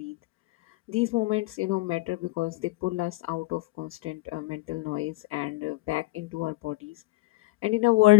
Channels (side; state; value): right; quieter; 21.1 dB